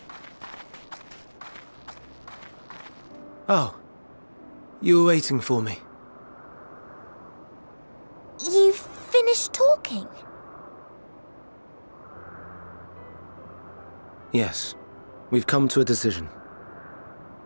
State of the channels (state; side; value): inverted; both; correlation -1.00